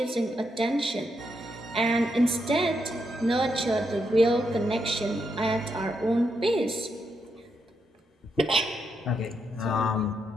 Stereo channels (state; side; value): normal; both; correlation 0.81